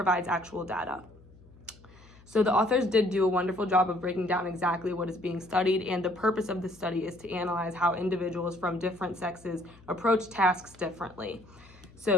actual data. So the authors did do a wonderful job of breaking down exactly what is being studied, and the purpose of the study is to analyze how individuals from different sexes approach tasks differently.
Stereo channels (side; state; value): left; noise; hum, 24 dB below the sound